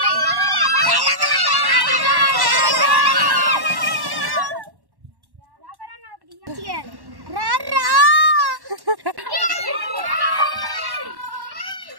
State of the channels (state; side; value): late; left; 1.1 ms